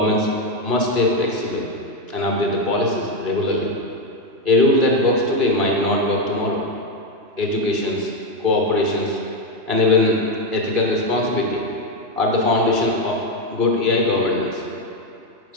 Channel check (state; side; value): late; left; 2.5 ms